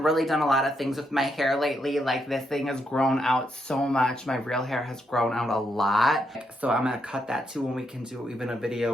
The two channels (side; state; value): both; normal; correlation 0.79